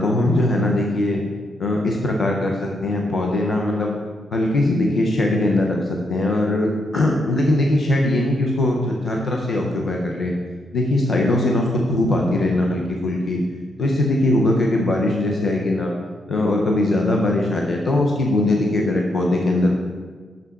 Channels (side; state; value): both; normal; correlation 0.77